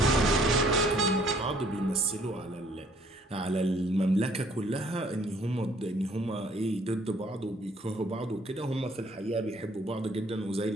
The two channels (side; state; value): both; normal; correlation 0.61